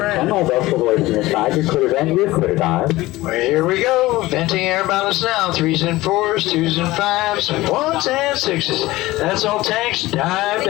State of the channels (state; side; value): quieter; right; 18.4 dB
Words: all vessel voice to the side. You're clear then, you're clear dive. Well, here we go. Venting air balance now. 3s and 4s, 2s and 5s, 1s and 6s. That's all tanks. Dive,